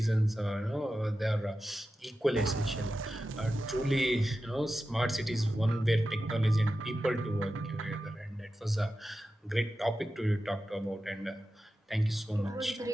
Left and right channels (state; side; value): normal; both; correlation 0.92